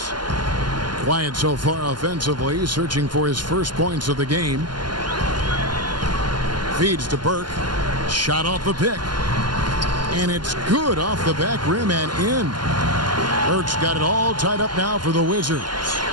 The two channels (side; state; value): left; late; 0.71 ms